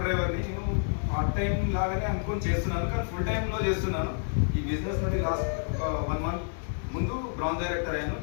డ్రైవర్ని నేను పార్ట్ టైం లాగానే అనుకొని చేస్తున్నాను, కానీ ఫుల్ టైంలో చేస్తున్నాను. ఈ బిజినెస్ నుండి లాస్ట్ ఒక 1 మంత్ ముందు బ్రాంజ్ డైరెక్టర్ అయ్యాను.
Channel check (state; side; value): silent; right; digital silence